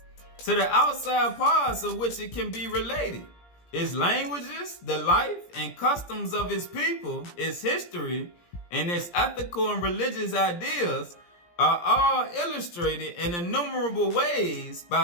to the outside parts of which it can be related. Its languages, the life and customs of its people, its history, and its ethical and religious ideas are all illustrated in innumerable ways by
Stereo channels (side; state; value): right; late; 17 ms